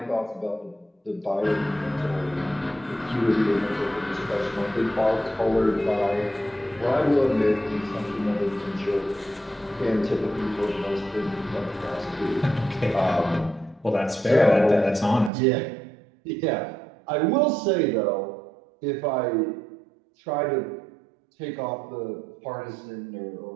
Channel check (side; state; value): left; drops out; at 15.3 s